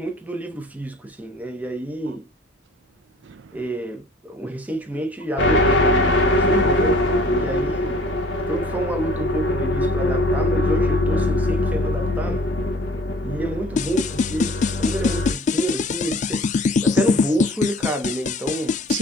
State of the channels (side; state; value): both; normal; correlation 0.50